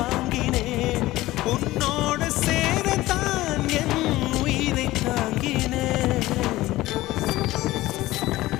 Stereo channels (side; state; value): right; quieter; 17.4 dB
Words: உன்னோடு சேரத்தான் என் உயிரை தாங்கினேன்